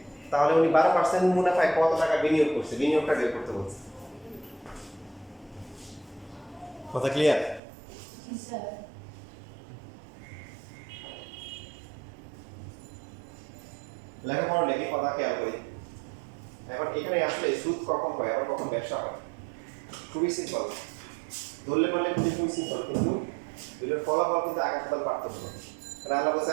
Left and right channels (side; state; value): left; drops out; at 7.6 s